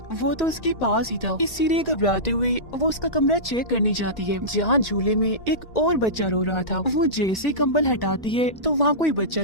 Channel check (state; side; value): late; right; 1.9 ms